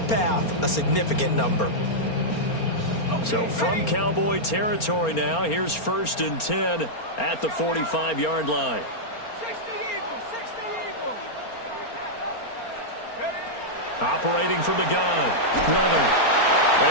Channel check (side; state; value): right; late; 4.3 ms